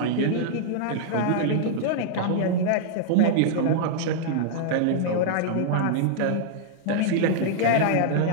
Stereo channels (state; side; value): different; both; correlation -0.02